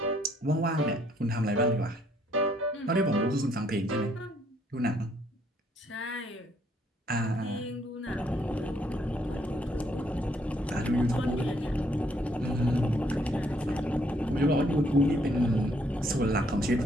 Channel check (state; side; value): normal; both; correlation 0.68